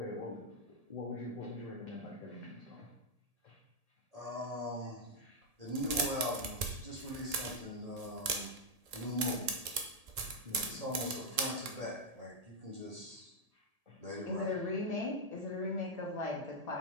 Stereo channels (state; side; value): late; left; 1.7 ms